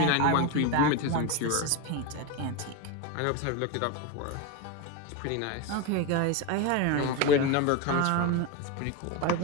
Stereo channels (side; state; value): both; different; correlation 0.04